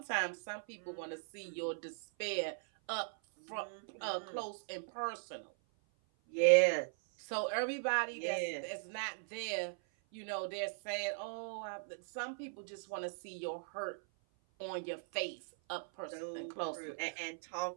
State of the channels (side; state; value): left; silent; 52 dB below the other